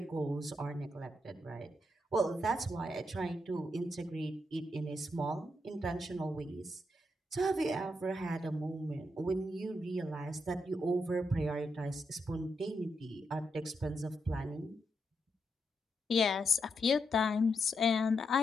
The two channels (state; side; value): normal; both; correlation 0.82